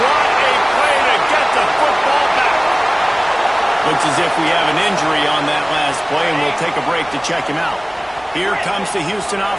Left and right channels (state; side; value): noise; left; rumble, 28 dB below the sound